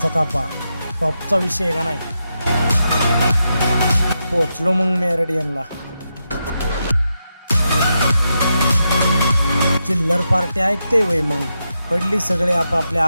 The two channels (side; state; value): both; inverted; correlation -0.86